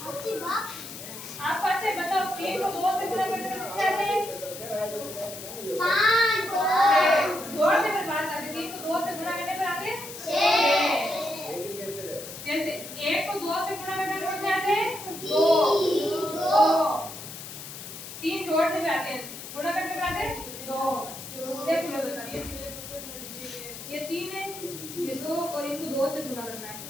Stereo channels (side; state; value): left; noise; hiss, 11 dB below the sound